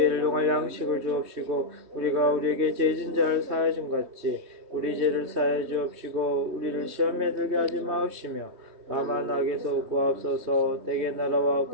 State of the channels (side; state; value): left; late; 3.2 ms